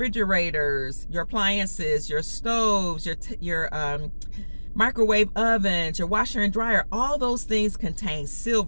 your appliances, your stoves, your microwave ovens, your washer and dryer. All those things contain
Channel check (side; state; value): both; inverted; correlation -1.00